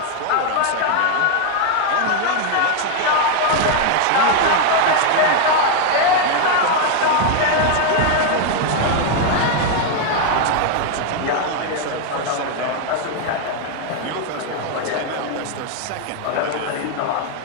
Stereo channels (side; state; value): both; different; correlation 0.01